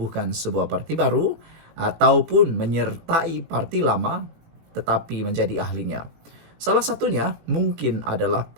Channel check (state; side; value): late; left; 18 ms